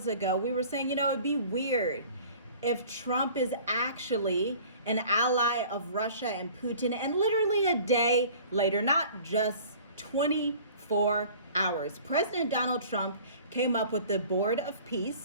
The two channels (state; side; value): inverted; both; correlation -0.47